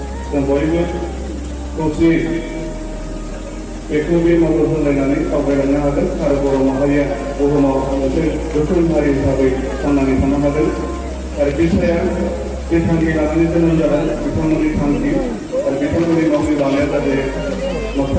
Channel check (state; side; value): identical; both; correlation 1.00